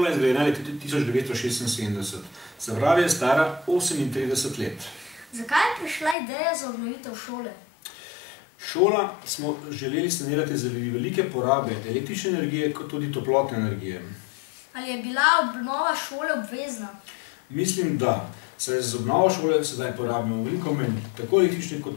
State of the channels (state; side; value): drops out; right; at 6.2 s